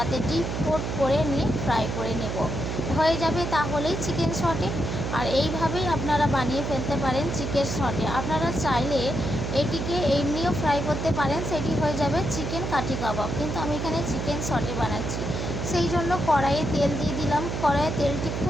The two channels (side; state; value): right; noise; hum, 3 dB below the sound